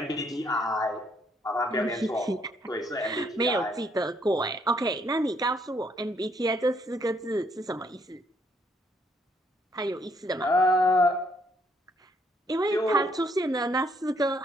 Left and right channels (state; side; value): normal; both; correlation 0.70